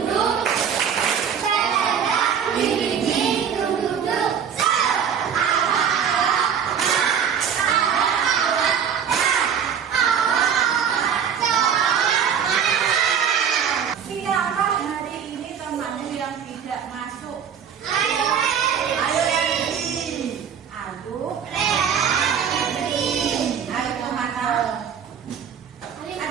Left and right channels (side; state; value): left; quieter; 7.7 dB